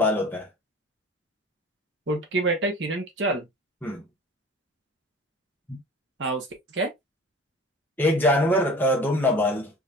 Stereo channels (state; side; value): normal; both; correlation 0.40